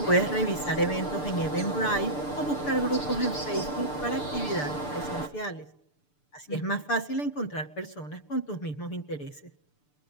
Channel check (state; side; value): late; right; 6.8 ms